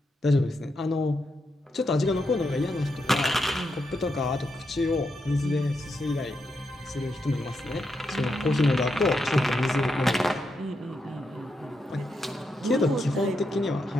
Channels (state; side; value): normal; both; correlation 0.83